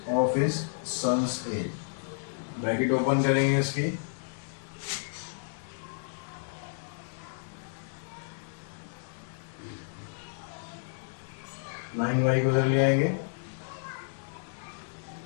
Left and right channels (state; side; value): silent; right; digital silence